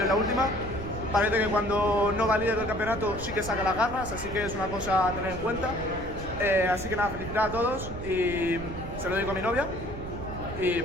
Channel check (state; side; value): noise; right; rumble, 10 dB below the sound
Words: en la última. Parece que cuando no va líder del campeonato sí que saca las garras, así que es una cosa a tener en cuenta. Así que nada, felicitar a todos y se lo digo a mi novia. Y